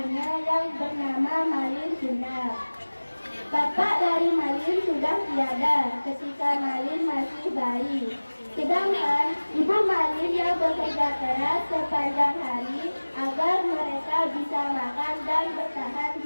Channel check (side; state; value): both; inverted; correlation -1.00